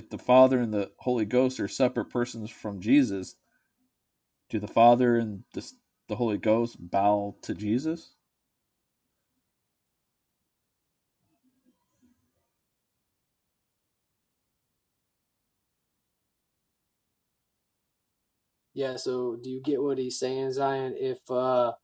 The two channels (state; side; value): identical; both; correlation 1.00